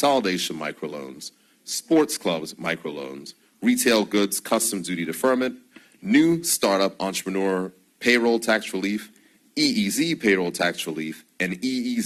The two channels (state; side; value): identical; both; correlation 1.00